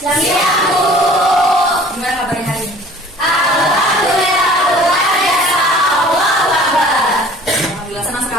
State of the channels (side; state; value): both; normal; correlation 0.48